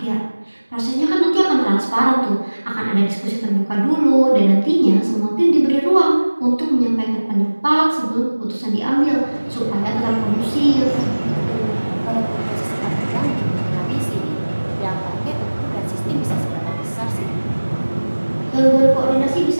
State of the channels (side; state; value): both; inverted; correlation -1.00